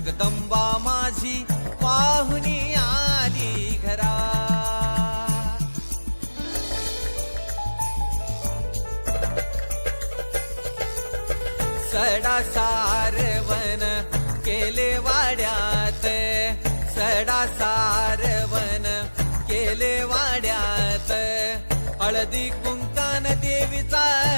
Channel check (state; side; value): inverted; both; correlation -1.00